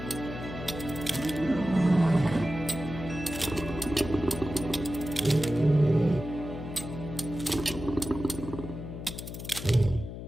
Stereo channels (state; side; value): noise; left; hum, 9 dB below the sound